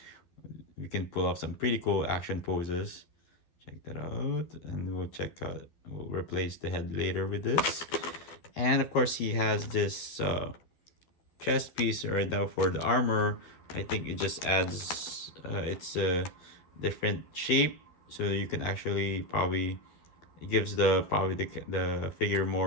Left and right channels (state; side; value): late; right; 12 ms